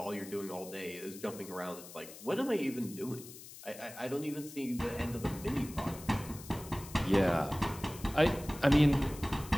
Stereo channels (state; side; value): noise; left; hiss, 15 dB below the sound